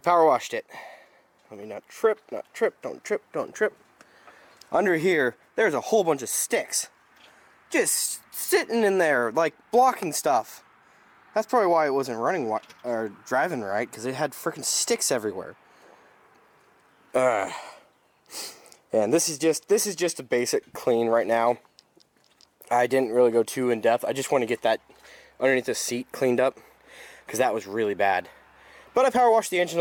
washed it. Let me not trip, don't trip. Under here, there's a whole bunch of sticks. Just sitting in there, like blocking stuff. That's probably why it wasn't running or driving right, because it had freaking sticks everywhere. And this is just a basic clean right now. I didn't really go too in depth. I just want to get that underneath the seat cleaned up, because that was really bad. But I power washed the engine a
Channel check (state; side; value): identical; both; correlation 1.00